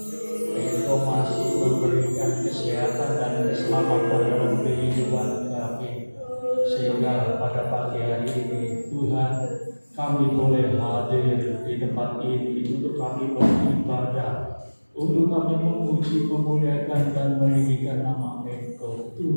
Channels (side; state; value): both; inverted; correlation -1.00